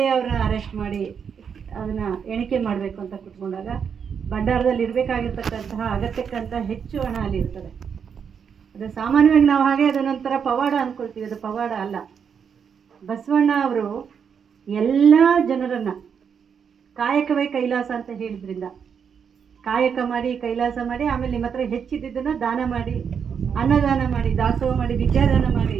ಅವ್ರನ್ನ ಅರೆಸ್ಟ್ ಮಾಡಿ ಅದನ್ನು ಎಣಿಕೆ ಮಾಡಬೇಕು ಅಂತ ಕೂತ್ಕೊಂಡಾಗ ಭಂಡಾರದಲ್ಲಿ ಇರಬೇಕಾಗಿರ್ತಕ್ಕಂತಹ ಅಗತ್ಯಕ್ಕಂತ ಹೆಚ್ಚು ಹಣ ಅಲ್ಲಿ ಇರ್ತದೆ. ಅದು ಸಾಮಾನ್ಯವಾಗಿ ನಾವು ಹಾಗೆ ಅದ ನಂತರ ಪವಾಡ ಅಂದ್ಕೊಳ್ತೀವಿ, ಅದು ಪವಾಡ ಅಲ್ಲ. ಬಸವಣ್ಣ ಅವರು ಎಲ್ಲ ಜನರನ್ನು ಕಾಯಕವೇ ಕೈಲಾಸ ಅಂತ ಹೇಳಿದ್ರಿಂದ ಕಾಯಕ ಮಾಡಿ ಕೈಲಾಸ ಮಾಡಿ ಆಮೇಲೆ ನಿಮ್ಮ ಹತ್ರ ಹೆಚ್ಚಿದ್ದನ್ನು ದಾನ ಮಾಡಿ ಅನ್ನದಾನ ಮಾಡಿ ದಾಸೋಹ ಮಾಡಿ ವಿದ್ಯಾದಾನ ಮಾಡಿ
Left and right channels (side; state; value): left; quieter; 7.0 dB